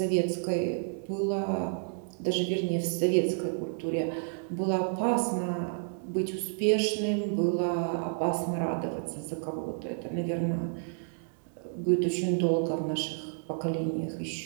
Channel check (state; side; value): silent; left; digital silence